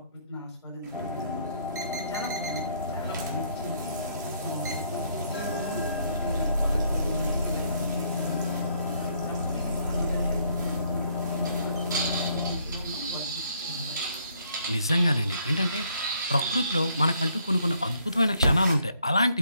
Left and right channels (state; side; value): inverted; both; correlation -0.68